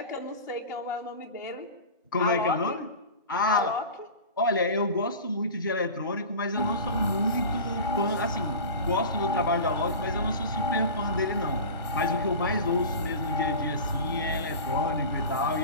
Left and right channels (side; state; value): both; inverted; correlation -0.33